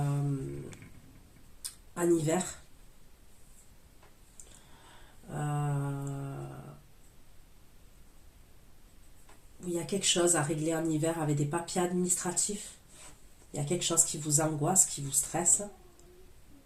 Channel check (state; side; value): identical; both; correlation 1.00